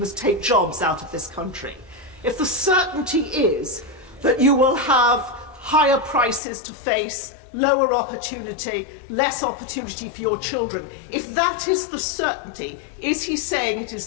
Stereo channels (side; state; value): right; drops out; at 6.4 s